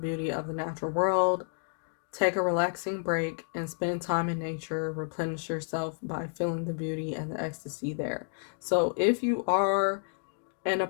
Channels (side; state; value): right; silent; digital silence